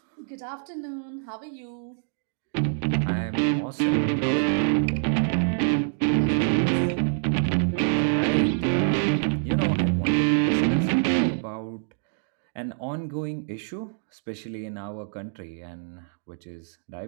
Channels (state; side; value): silent; left; digital silence